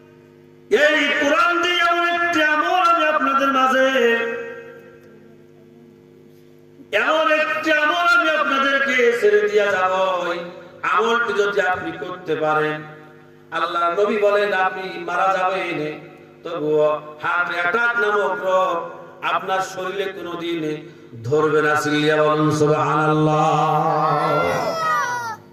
এই কোরআন দিয়ে এমন একটি আমল আমি আপনাদের মাঝে, এমন একটি আমল আমি আপনাদেরকে ছেড়ে দিয়া যাব। আমলটি যদি আপনি করতে পারেন, আল্লাহ নবী বলেন আপনি মারা যাবেন, তবুও হার্ট অ্যাটাক নামক রোগ আপনার শরীরে কোনোদিন ধরবে না। চিল্লিয়া বলুন সুবহানাল্লাহ।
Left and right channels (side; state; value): both; identical; correlation 1.00